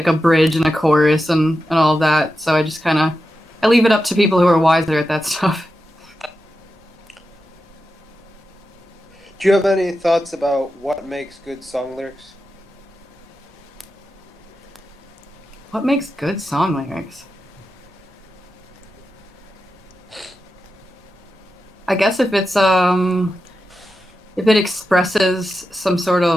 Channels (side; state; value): both; normal; correlation 0.90